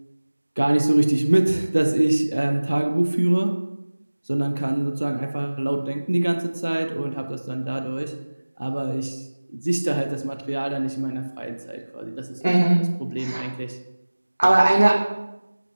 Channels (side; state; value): both; inverted; correlation -1.00